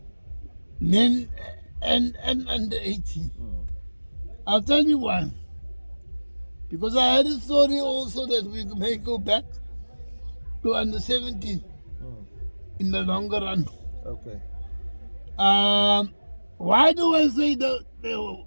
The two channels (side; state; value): both; inverted; correlation -1.00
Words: men, and under 18. I'll tell you why. Because I had a story also that we may go back to under 17 in the longer run. Okay. Why do I say that